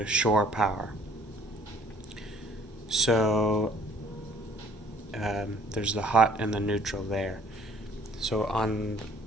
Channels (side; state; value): both; normal; correlation 0.57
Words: shore power. So there's the hot and the neutral there. So on